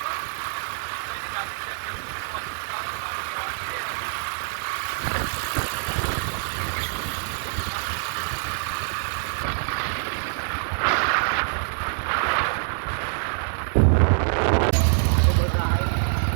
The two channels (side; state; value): left; silent; digital silence